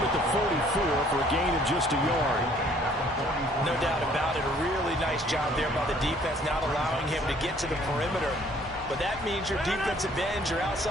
at the 44 for a gain of just a yard. No doubt about it. A really nice job there by the defense, not allowing him to get to the perimeter. But that means your defensive ends, your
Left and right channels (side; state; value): both; normal; correlation 0.59